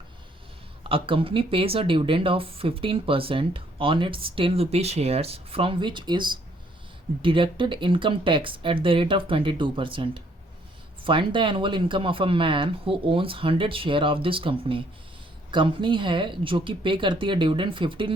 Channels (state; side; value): normal; both; correlation 0.66